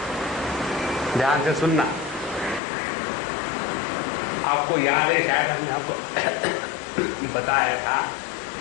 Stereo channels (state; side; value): drops out; right; at 2.6 s